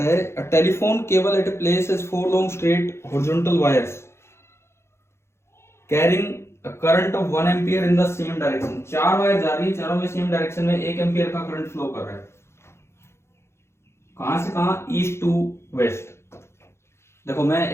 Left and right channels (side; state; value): right; late; 0.13 ms